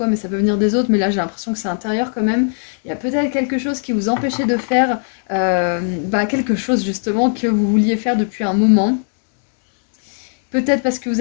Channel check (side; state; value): right; silent; 64 dB below the other